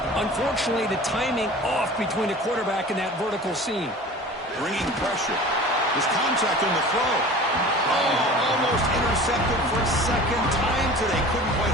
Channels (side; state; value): both; normal; correlation 0.40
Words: Unfortunately, the timing off between the quarterback and that vertical seam. Bringing pressure. There's contact on the throw. Oh, almost intercepted for a 2nd time today. Couldn't quite